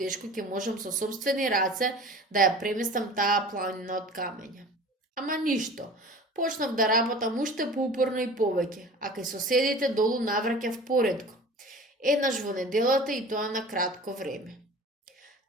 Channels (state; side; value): normal; both; correlation 0.40